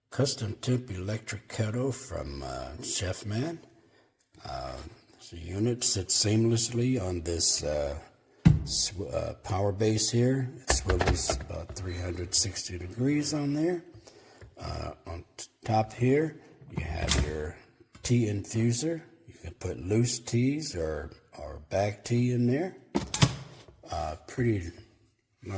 custom temp electric kettle from Chefman. The unit sits seamlessly on this power base here. It swivels about 360 degrees on there. On top here, you have your tea infuser. You can put loose teas or bag tea in there. Pretty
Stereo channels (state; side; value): identical; both; correlation 1.00